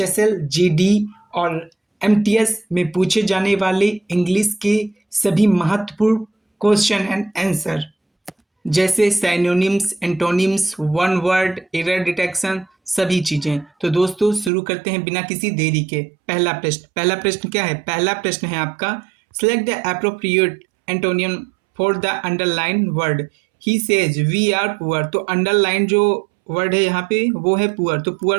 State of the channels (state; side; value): drops out; left; at 14.5 s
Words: जीडी और एमटीएस में पूछे जाने वाले इंग्लिश के सभी महत्वपूर्ण क्वेश्चन एंड आंसर, जैसे synonyms, antonyms, one word, error detection, सभी चीजें। तो दोस्तों शुरू करते हैं बिना किसी देरी के। पहला प्रश्न क्या है? पहला प्रश्न है आपका, select the appropriate antonym for the underline word. He says we are poor. तो अंडरलाइन जो वर्ड है यहाँ पे वो है पुअर। तो